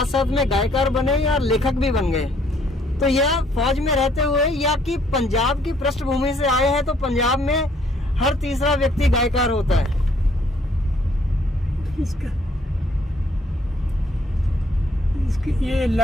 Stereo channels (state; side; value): normal; both; correlation 0.65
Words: साथ में गायकार बने या लेखक भी बन गए, तो यह फौज में रहते हुए या कि पंजाब की पृष्ठभूमि से आए हैं, तो पंजाब में हर तीसरा व्यक्ति गायकार होता है। इसकी ये